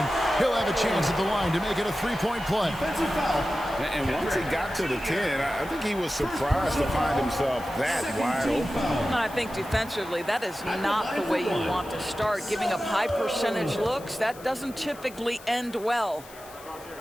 he'll have a chance at the line to make it a 3-point play. And once he got to the 10, I think he was surprised to find himself that wide open. I think defensively, that is not the way you want to start. Giving up high percentage looks, that doesn't typically end well.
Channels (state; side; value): noise; left; hiss, 20 dB below the sound